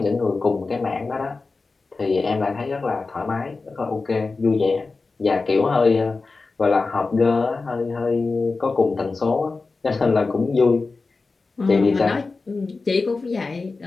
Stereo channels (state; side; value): quieter; right; 3.9 dB